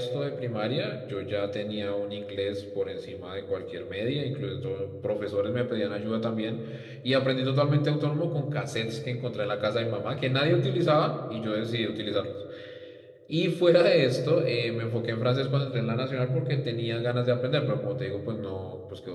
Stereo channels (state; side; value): identical; both; correlation 1.00